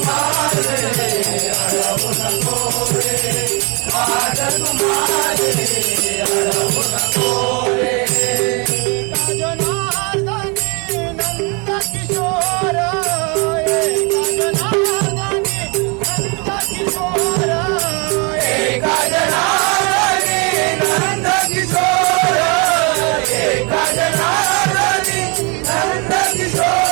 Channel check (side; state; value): left; quieter; 32.0 dB